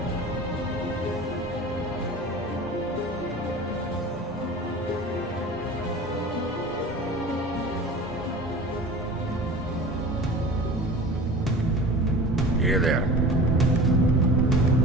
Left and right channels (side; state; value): both; normal; correlation 0.38